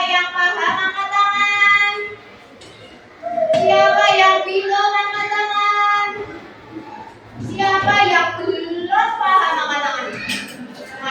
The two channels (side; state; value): both; identical; correlation 1.00